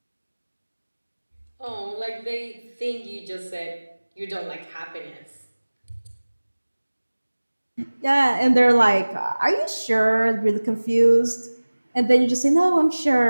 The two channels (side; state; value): both; inverted; correlation -1.00